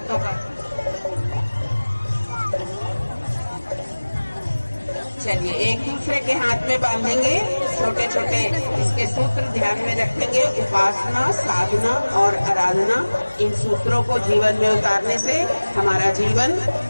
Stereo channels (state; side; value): inverted; both; correlation -1.00